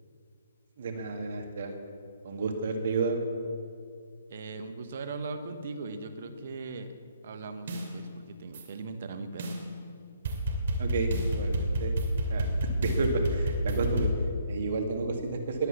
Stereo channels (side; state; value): both; inverted; correlation -0.67